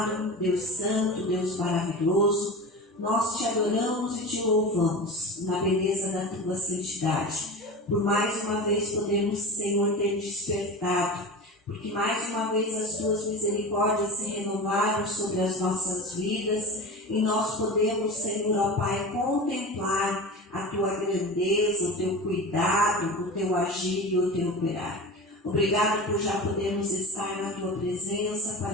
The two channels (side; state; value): both; normal; correlation 0.31